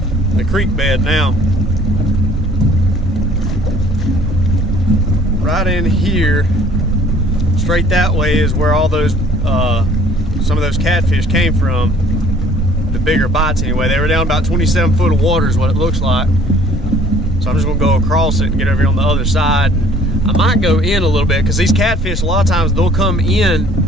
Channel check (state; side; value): normal; both; correlation 0.54